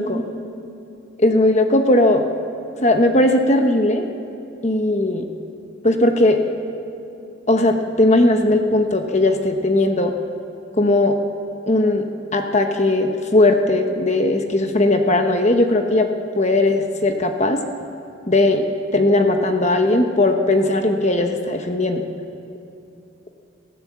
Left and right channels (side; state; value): both; normal; correlation 0.45